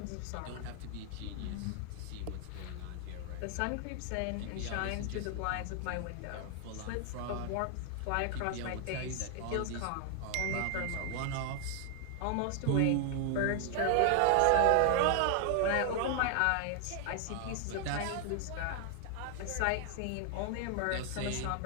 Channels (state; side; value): different; both; correlation 0.00